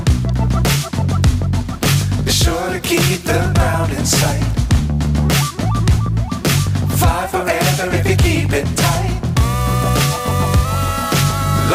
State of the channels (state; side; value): identical; both; correlation 1.00